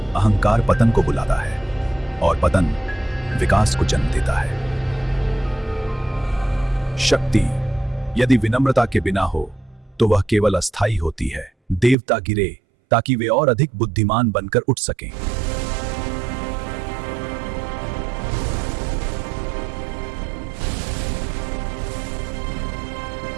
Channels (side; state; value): left; drops out; at 12.0 s